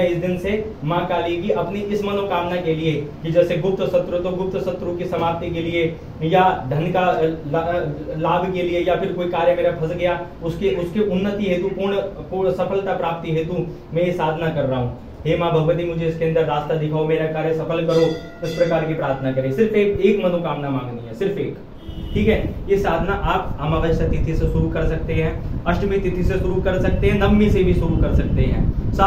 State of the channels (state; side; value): identical; both; correlation 1.00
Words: इस दिन से माँ काली की अपनी इस मनोकामना के लिए, कि जैसे गुप्त शत्रु तो गुप्त शत्रु की समाप्ति के लिए, या धन का लाभ के लिए, या फिर कोई कार्य मेरा फंस गया उसके उन्नति हेतु, पूर्ण सफलता प्राप्ति हेतु मैं ये साधना कर रहा हूँ। हे माँ भगवती, मुझे इसके अंदर रास्ता दिखाओ, मेरा कार्य सफल करो। इस प्रकार की प्रार्थना करें। सिर्फ एक मनोकामना मांगनी है, सिर्फ एक। ठीक है, ये साधना आप अमावस्या तिथि से शुरू कर सकते हैं, अष्टमी तिथि से शुरू कर सकते हैं, नवमी से भी शुरू कर सकते हैं।